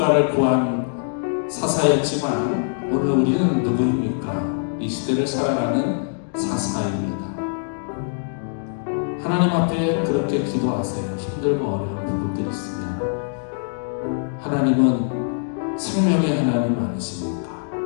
구한 사사였지만 오늘 우리는 누구입니까? 이 시대를 살아가는 사사입니다. 하나님 앞에 그렇게 기도하세요. 힘들고 어려운 부분들이 있으면 하나님은 생명의 하나님 아니십니까?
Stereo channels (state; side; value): silent; right; digital silence